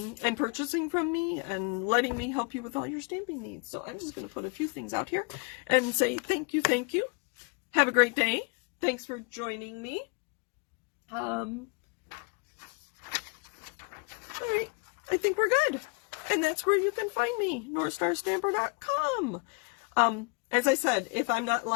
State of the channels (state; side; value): quieter; right; 33.7 dB